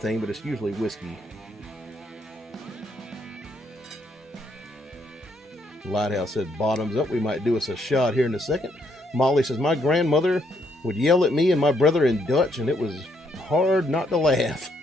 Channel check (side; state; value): both; normal; correlation 0.73